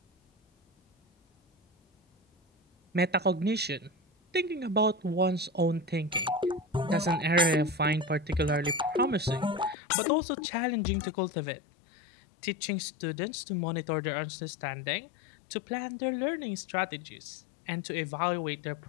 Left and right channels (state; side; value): drops out; right; at 9.8 s